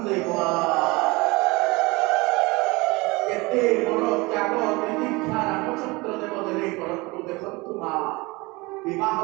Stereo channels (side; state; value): left; quieter; 24.1 dB